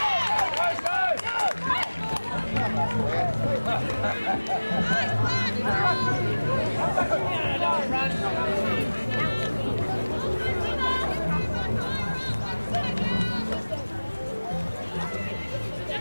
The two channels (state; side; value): inverted; both; correlation -1.00